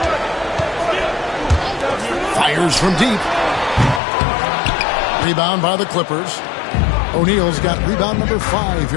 Fires from deep. Rebound by the Clippers. O'Neal's got rebound number 5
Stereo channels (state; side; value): drops out; right; at 4.0 s